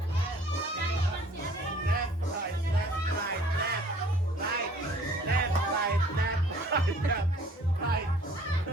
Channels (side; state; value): both; normal; correlation 0.54